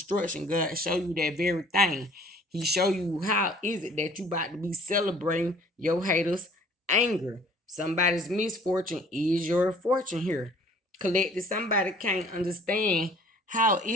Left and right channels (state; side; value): normal; both; correlation 0.53